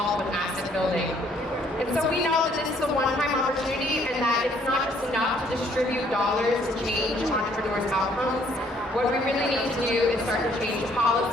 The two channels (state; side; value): normal; both; correlation 0.64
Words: with asset building? And so we know that this is a one-time opportunity, and that it's not just enough to distribute dollars to change entrepreneurs' outcomes. What we really need to do is start to change